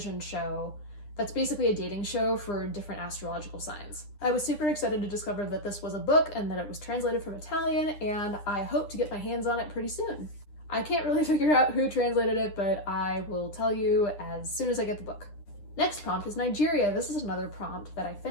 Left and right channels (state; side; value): late; right; 9.9 ms